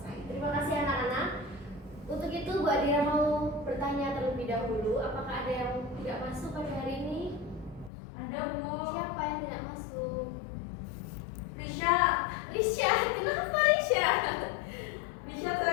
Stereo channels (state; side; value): drops out; right; at 7.9 s